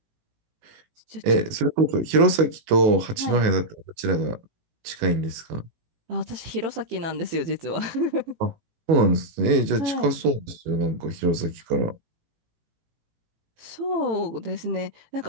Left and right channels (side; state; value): left; late; 18 ms